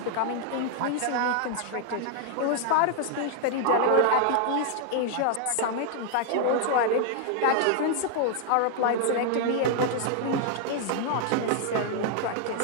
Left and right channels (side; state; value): both; different; correlation 0.00